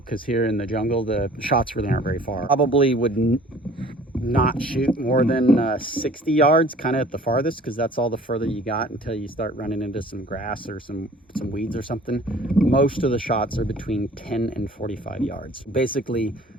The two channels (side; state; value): both; normal; correlation 0.50